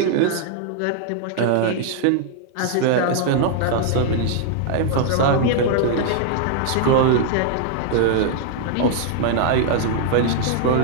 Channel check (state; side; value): different; both; correlation -0.01